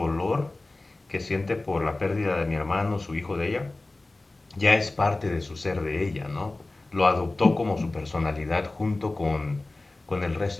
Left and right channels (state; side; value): quieter; right; 3.0 dB